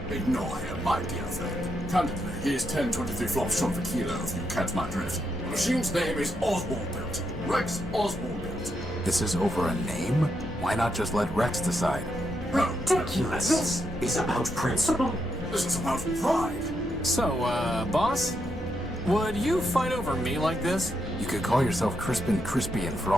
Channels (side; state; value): both; normal; correlation 0.81